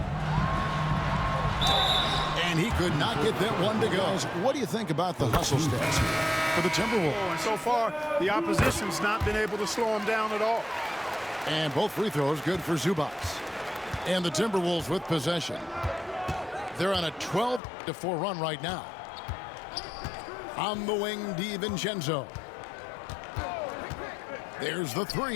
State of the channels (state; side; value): drops out; right; at 17.6 s